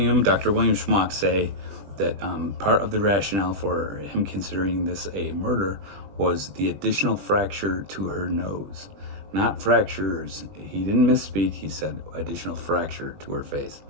William Schmock, say that part of the rationale for him considering this a murder was the additional fracture to her nose. Not fractures. He didn't misspeak. He said additional fracture to her face.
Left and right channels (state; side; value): late; left; 20 ms